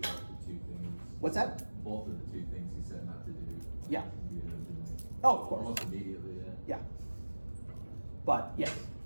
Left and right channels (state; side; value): inverted; both; correlation -1.00